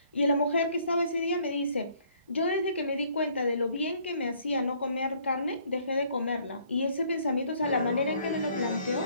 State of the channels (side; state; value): both; inverted; correlation -0.63